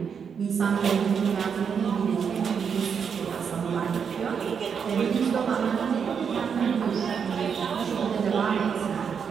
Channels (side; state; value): left; quieter; 6.8 dB